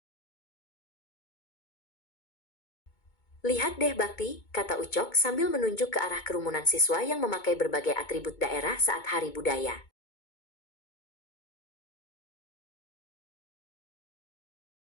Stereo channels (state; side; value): late; right; 2.2 ms